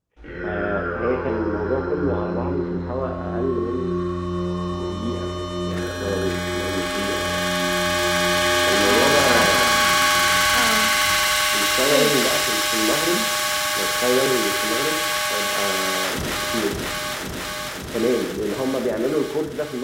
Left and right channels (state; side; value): identical; both; correlation 1.00